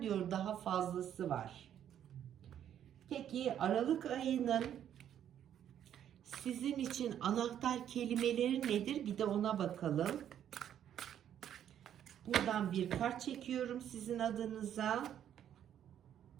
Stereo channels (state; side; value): quieter; left; 10.1 dB